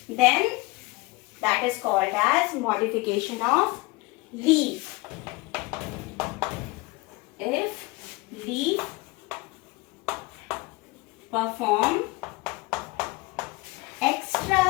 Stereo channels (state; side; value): quieter; right; 23.4 dB